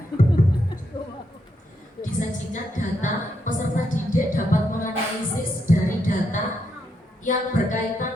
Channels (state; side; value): normal; both; correlation 0.80